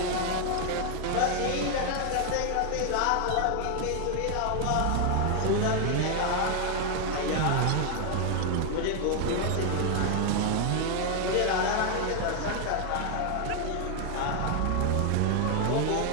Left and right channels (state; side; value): different; both; correlation 0.00